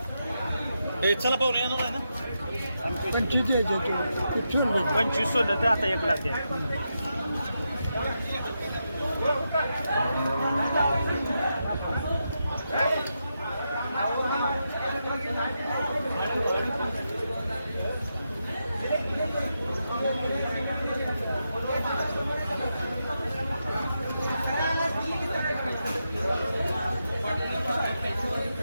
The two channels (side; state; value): both; inverted; correlation -0.86